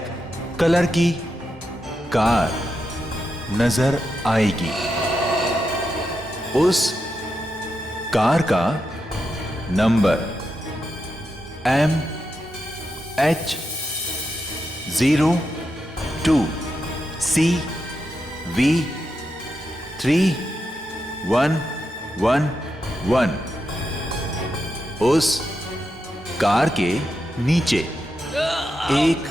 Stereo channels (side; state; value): both; normal; correlation 0.86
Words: कलर की कार नजर आएगी। उस कार का नंबर MH02CV3111। उस कार के नीचे एक